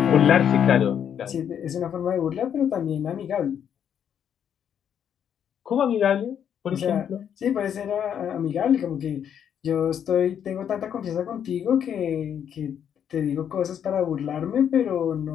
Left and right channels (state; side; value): quieter; right; 8.8 dB